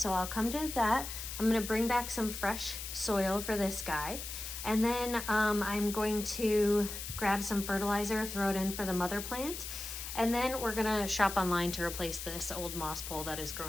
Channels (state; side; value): noise; left; hiss, 7 dB below the sound